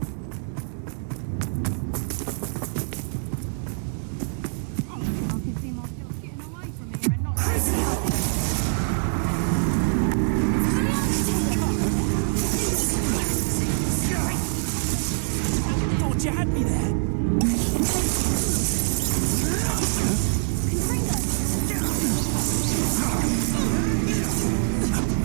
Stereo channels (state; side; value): silent; left; 59 dB below the other